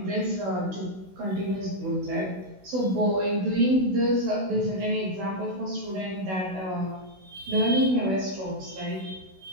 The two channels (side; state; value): left; late; 16 ms